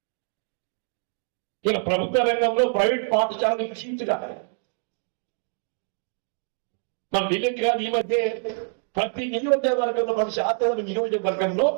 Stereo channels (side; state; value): left; silent; 61 dB below the other